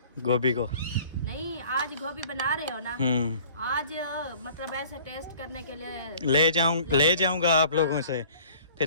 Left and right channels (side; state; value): both; inverted; correlation -0.50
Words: गोभी को। नहीं आज गोभी बना रहे हो ना, आज मतलब ऐसे टेस्ट करने के लिए ले जाऊंगा आप लोगों से,